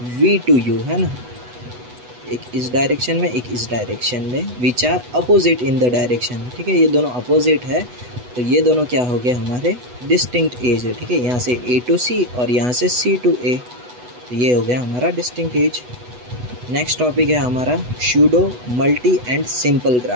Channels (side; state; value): left; late; 8.1 ms